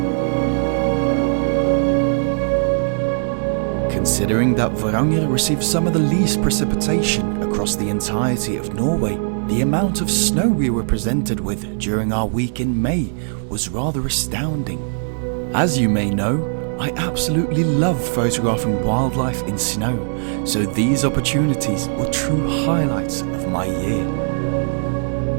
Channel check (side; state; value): left; silent; digital silence